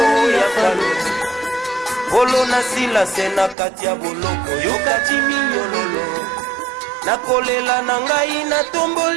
ya falo bolo na silase na kati ya boloko yokati minyololo nakolela na ngai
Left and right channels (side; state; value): left; drops out; at 3.6 s